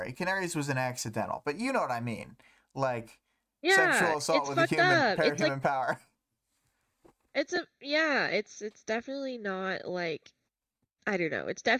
Canary's was an accidental, but you know what I mean, like Yeah, sexual assault it's with a fucked human, up. It's like human power. it's definitely not like I don't know. It's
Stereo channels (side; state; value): both; identical; correlation 1.00